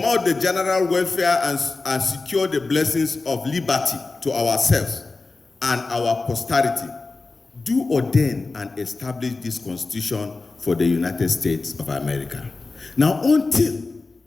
the general welfare and secure the blessings of liberty to ourselves and our posterity, do ordain and establish this Constitution for the United States of America." Now, until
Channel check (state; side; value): quieter; right; 3.7 dB